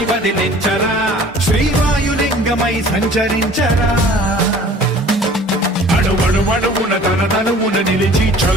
వదిలించరా శ్రీవాయులింగమై సంచరించరా అణువణువున తన తనువున నిలిచి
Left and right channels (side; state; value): both; normal; correlation 0.49